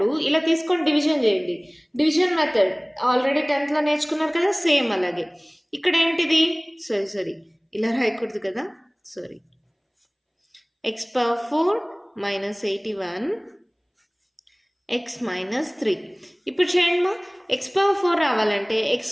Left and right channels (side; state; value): both; identical; correlation 1.00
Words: ఇలా తీసుకొని డివిజన్ చేయండి. డివిజన్ మెథడ్ ఆల్రెడీ 10th నేర్చుకున్నారు కదా, సేమ్ అలాగే. ఇక్కడ ఏంటిది, సారీ ఇలా రాయకూడదు కదా, sorry. x/4 minus 81 X minus 3. ఇప్పుడు చేయండి మా, x/4 రావాలంటే